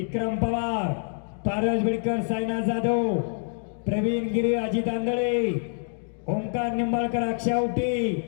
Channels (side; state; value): right; silent; digital silence